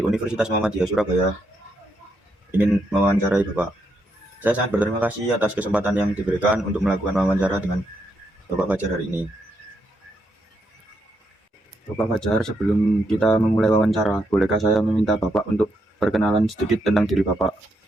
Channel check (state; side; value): normal; both; correlation 0.79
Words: Universitas Muhammadiyah Surabaya ingin mewawancarai Bapak. Saya sangat berterima kasih atas kesempatan yang diberikan untuk melakukan wawancara dengan Bapak Fajar hari ini. Bapak Fajar, sebelum kita memulai wawancara, bolehkah saya meminta Bapak untuk perkenalan sedikit tentang diri Bapak?